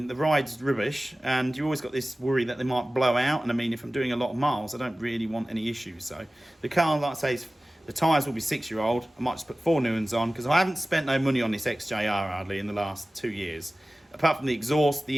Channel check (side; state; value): both; normal; correlation 0.97